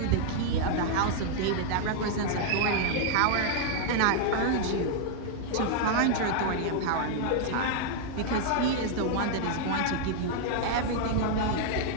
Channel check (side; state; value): both; different; correlation 0.00